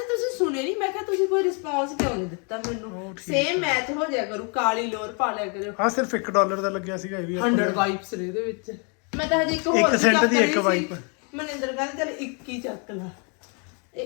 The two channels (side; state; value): right; quieter; 36.2 dB